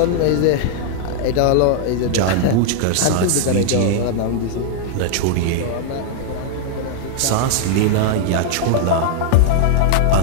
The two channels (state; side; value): different; both; correlation 0.00